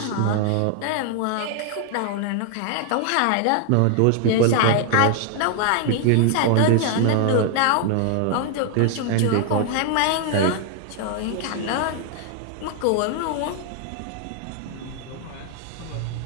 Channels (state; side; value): different; both; correlation 0.00